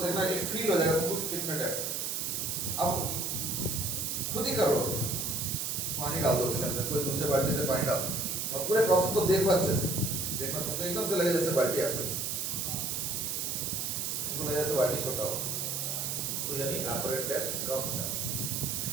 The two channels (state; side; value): noise; right; hiss, 1 dB below the sound